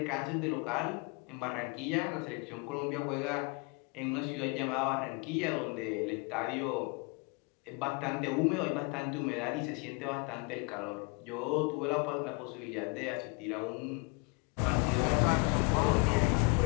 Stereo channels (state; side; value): quieter; right; 32.0 dB